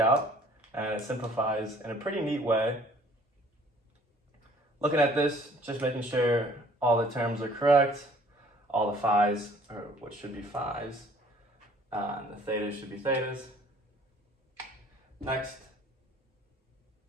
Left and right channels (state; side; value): normal; both; correlation 0.55